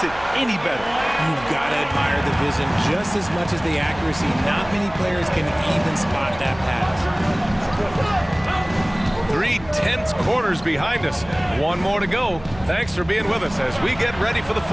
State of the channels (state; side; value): noise; right; hum, 18 dB below the sound